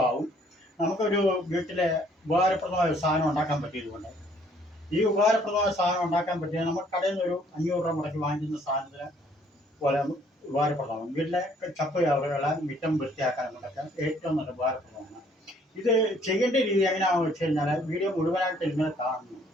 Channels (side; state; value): both; normal; correlation 0.62